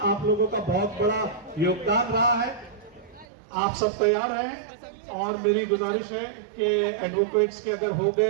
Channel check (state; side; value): drops out; left; at 3.2 s